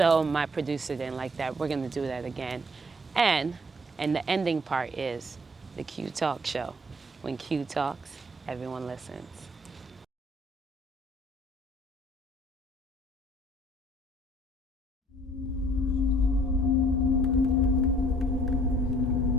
my producer didn't like that. We're gonna do that again. And the ending part is the Q Talk Show. When Q talks, everyone listens.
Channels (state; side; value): normal; both; correlation 0.57